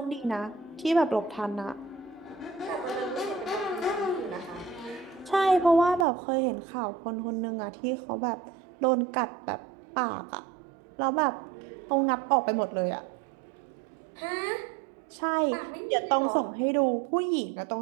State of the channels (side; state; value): left; drops out; at 6.1 s